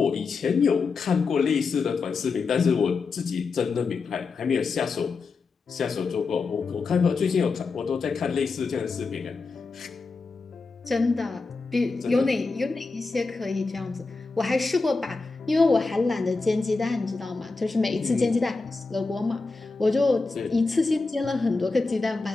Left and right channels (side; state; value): right; quieter; 4.2 dB